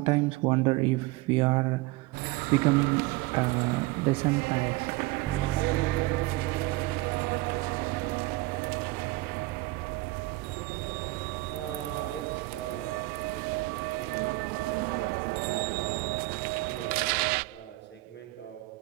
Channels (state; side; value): quieter; left; 20.9 dB